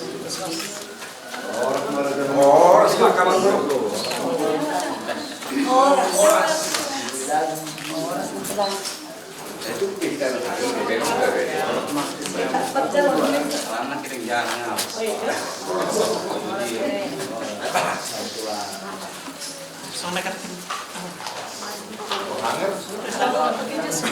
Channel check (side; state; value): both; identical; correlation 1.00